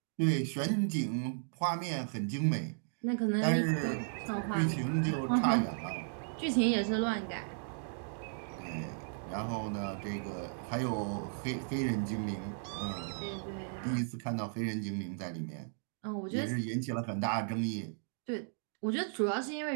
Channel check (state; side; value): silent; left; digital silence